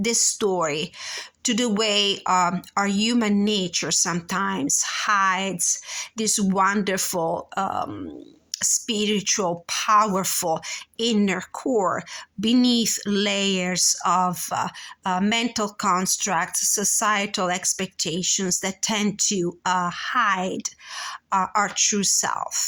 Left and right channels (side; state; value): both; identical; correlation 1.00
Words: story to the way our human nature sometimes hides this wonderful spiritual, powerful inner core beneath layers of mental constructs, societal expectations that tend to hide our true